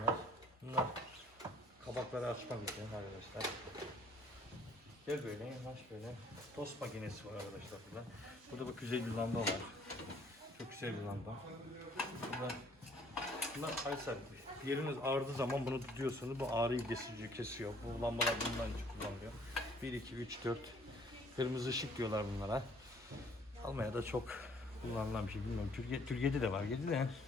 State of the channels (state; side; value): normal; both; correlation 0.60